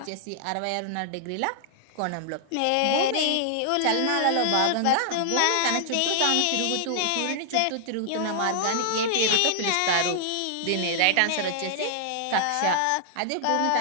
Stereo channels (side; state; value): both; different; correlation -0.01